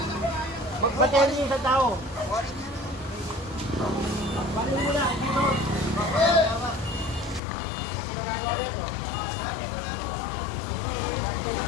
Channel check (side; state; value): right; drops out; at 7.4 s